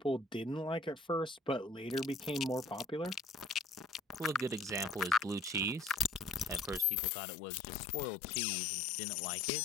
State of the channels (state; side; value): drops out; right; at 6.9 s